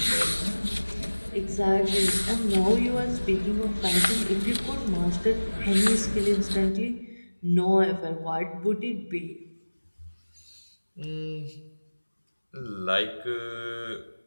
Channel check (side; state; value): both; inverted; correlation -1.00